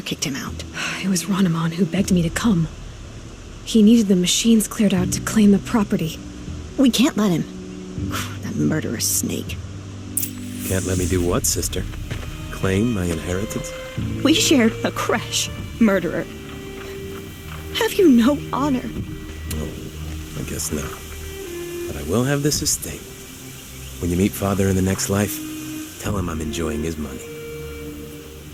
kicked him out. It was Rainaman who begged me to come. He needed the machines cleared out to claim the property. We can't let him. That murderous snake. Can't let me do what, sister? Claim my inheritance? We shared a creche, murderer. Have you no honor? Oh, I guess not. But I will have this estate. When you meet Father in the next life, tell him I'm enjoying his money.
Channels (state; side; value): identical; both; correlation 1.00